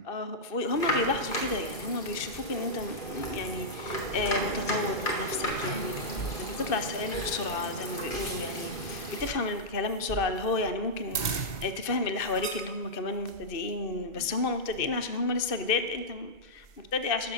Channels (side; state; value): right; late; 2.6 ms